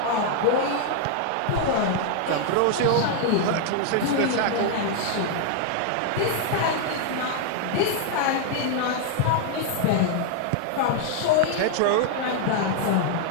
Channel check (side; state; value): both; different; correlation 0.00